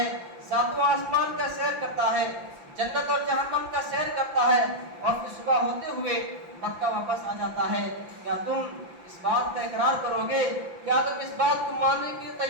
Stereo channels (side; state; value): left; late; 5.8 ms